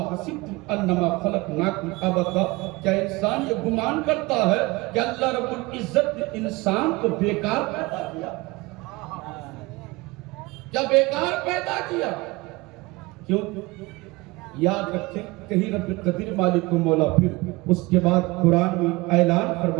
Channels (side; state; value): left; quieter; 22.9 dB